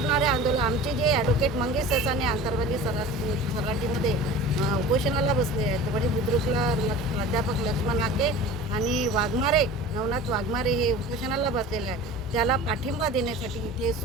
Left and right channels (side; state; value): both; normal; correlation 0.38